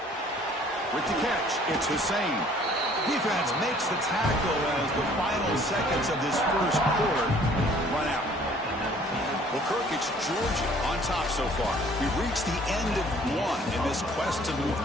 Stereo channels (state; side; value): normal; both; correlation 0.56